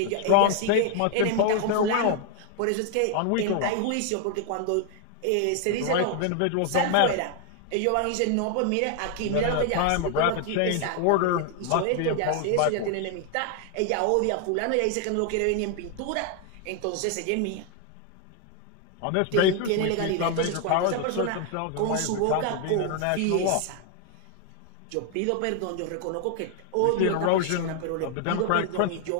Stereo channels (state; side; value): different; both; correlation 0.00